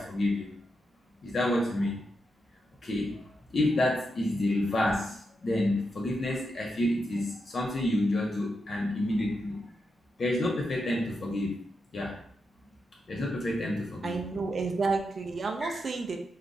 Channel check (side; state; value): both; normal; correlation 0.85